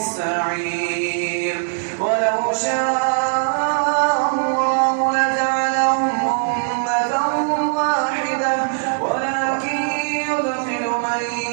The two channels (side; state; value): left; silent; 66 dB below the other